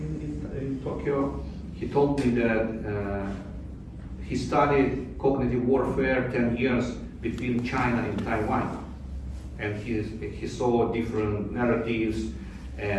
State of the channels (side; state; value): both; identical; correlation 1.00